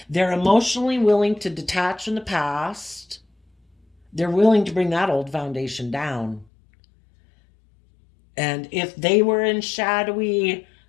They're emotionally willing to detach from the past. They're willing to bring that old foundation down. And if they were in shadowy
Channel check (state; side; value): drops out; right; at 6.5 s